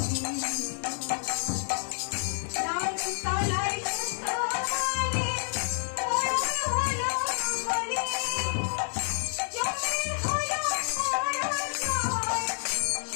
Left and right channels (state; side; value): silent; right; 59 dB below the other